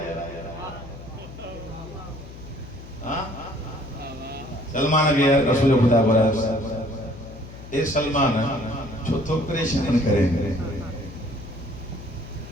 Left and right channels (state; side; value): noise; left; hum, 15 dB below the sound